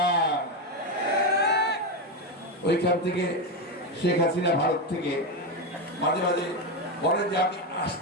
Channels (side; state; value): both; normal; correlation 0.11